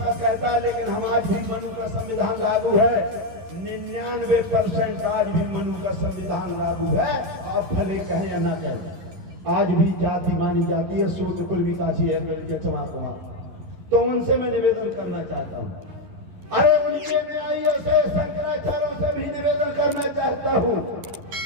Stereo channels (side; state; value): left; late; 11 ms